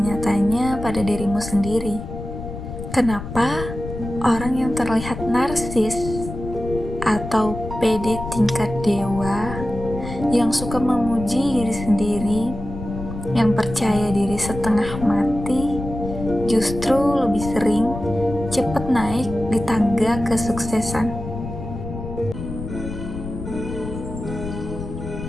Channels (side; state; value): left; noise; rumble, 9 dB below the sound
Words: pada dirimu sendiri, kenapa orang yang terlihat narsis atau pede tingkat dewa, yang suka memuji diri sendiri, yang percaya diri setengah mati, justru lebih sering cepat naik di tangga kesuksesan?